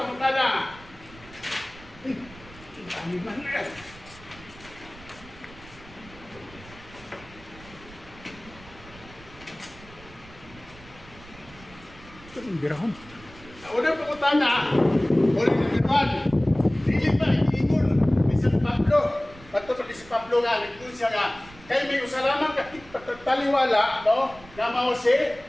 Birahon. Una pangutana. Uli na gano'n. Dili pa nag-iingon. Bisan Pablo. Bato pa si Pablo nga. Nag-iingon siya nga. Kaya may usalaman kapit pataliwala, no? Na mao si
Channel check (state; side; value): noise; right; rumble, 21 dB below the sound